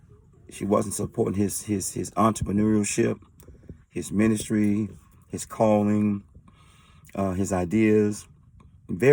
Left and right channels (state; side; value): identical; both; correlation 1.00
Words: supporting his entrepreneurship, his ministry, his calling, his ideas.